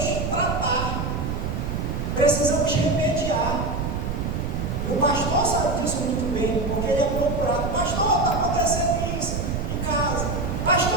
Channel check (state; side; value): noise; right; rumble, 2 dB below the sound